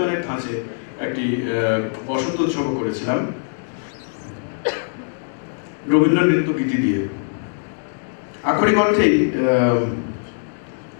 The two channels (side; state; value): right; silent; digital silence